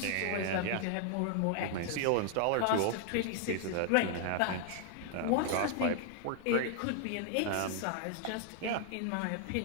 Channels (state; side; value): different; both; correlation 0.00